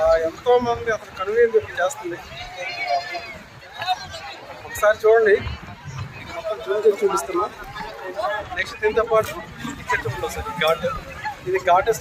ఎంతోమంది అసలు కనువిందు చేస్తుంది. ఒకసారి చూడండి, మొత్తం జూమ్ చేసి చూపిస్తున్నా. నెక్స్ట్ దీంతో పాటు ఇక్కడ చూడండి సార్, ఘాట్. ఇది ఘాట్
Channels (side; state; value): both; identical; correlation 1.00